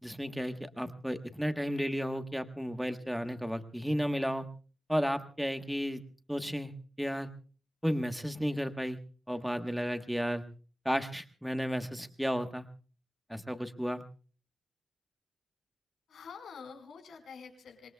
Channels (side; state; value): both; normal; correlation 0.98